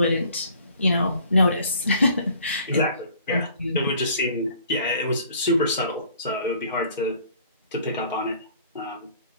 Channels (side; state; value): both; inverted; correlation -0.54